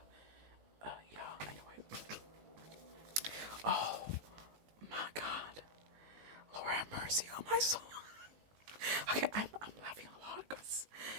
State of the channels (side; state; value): left; late; 19 ms